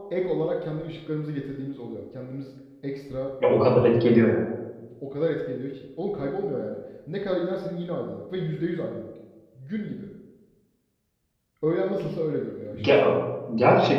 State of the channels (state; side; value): identical; both; correlation 1.00